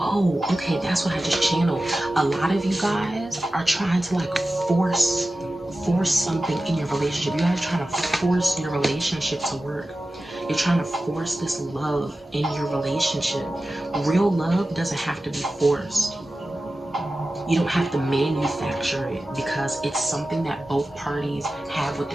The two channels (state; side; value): normal; both; correlation 0.94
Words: okay, that's what I just channeled. A lot of you guys are trying to like force something in your relationship. You guys are trying to force your relationship to work. You're trying to force this love in your relationship. Real love doesn't have to be forced. You don't have to manufacture it, because it's something that both parties have